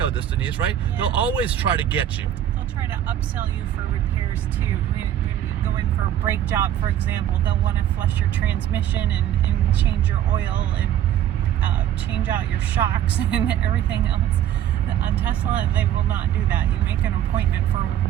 this, Denise, right? Yeah. They'll always try to get you. They'll try to upsell you for repairs too. When you're going for a brake job, for example, they'll want to flush your transmission and change your oil and change out your shocks and everything else. On Tesla, they will not do that. You make an appointment for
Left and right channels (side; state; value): left; quieter; 11.2 dB